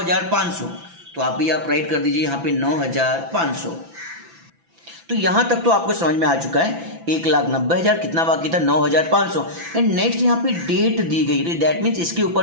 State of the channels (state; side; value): late; left; 6.0 ms